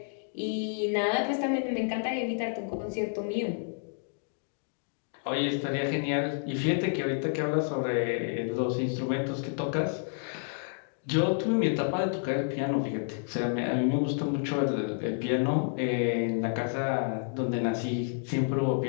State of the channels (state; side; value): silent; right; digital silence